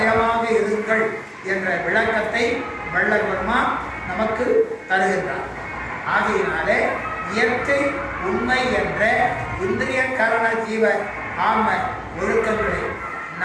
இருங்கள் என்ற விளக்கத்தை வள்ளல் பெருமான் நமக்கு தருகின்றார். ஆகையினாலே இயற்கை உண்மை என்ற இந்திரிய கரண ஜீவ ஆன்ம ஒழுக்கங்களை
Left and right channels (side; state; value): both; identical; correlation 1.00